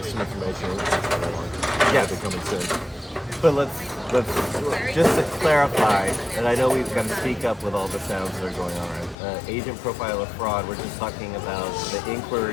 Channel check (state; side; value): drops out; right; at 9.2 s